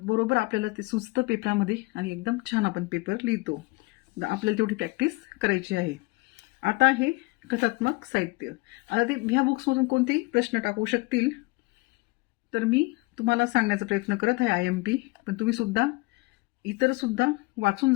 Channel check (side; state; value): right; quieter; 24.5 dB